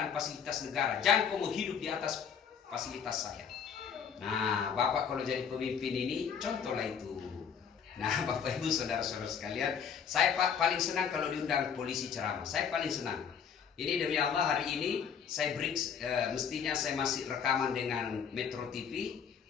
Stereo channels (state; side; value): quieter; right; 7.3 dB